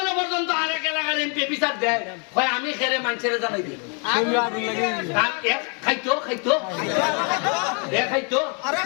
পর্যন্ত আরেক এলাকার এমপি বিচার দেয়, হয় আমি খেরে মানুষের জানাই দিই। খাইতো খাইতো খাইতো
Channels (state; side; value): quieter; right; 37.6 dB